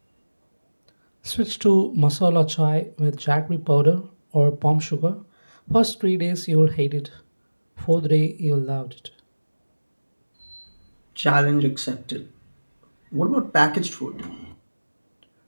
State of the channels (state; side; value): inverted; both; correlation -1.00